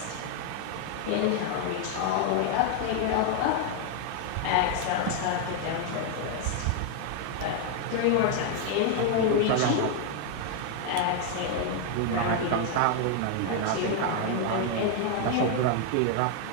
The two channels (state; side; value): different; both; correlation 0.00